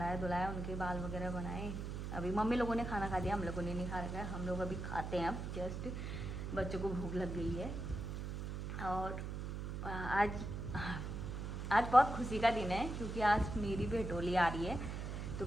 धुलाया, उनके बाल वगैरह बनाए। अभी मम्मी लोगों ने खाना खा दिया, हम लोगों ने नहीं खा रखा है, हम लोग अभी खाते हैं। अब जस्ट बच्चों को भूख लग गई है। और आज बहुत खुशी का दिन है क्योंकि आज मेरी भेटोली आ रही है। तो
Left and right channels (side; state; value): right; noise; hum, 4 dB below the sound